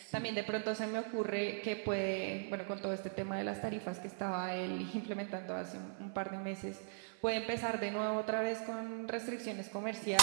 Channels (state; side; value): silent; left; 51 dB below the other